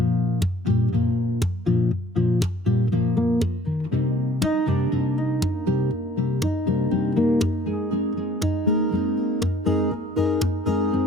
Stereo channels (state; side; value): normal; both; correlation 0.57